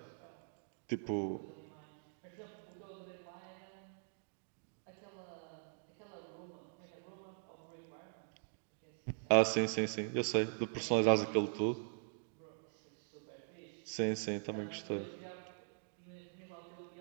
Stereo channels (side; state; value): left; silent; digital silence